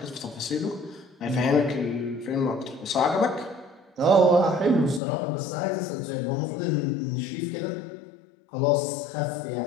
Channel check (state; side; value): drops out; right; at 5.0 s